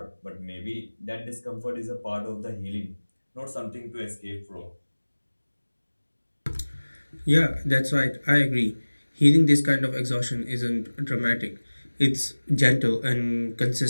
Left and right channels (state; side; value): inverted; both; correlation -1.00